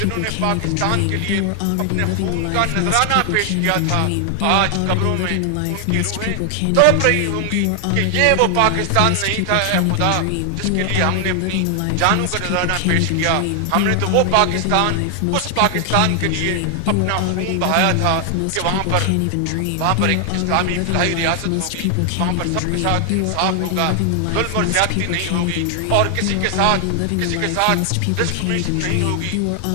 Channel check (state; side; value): different; both; correlation 0.00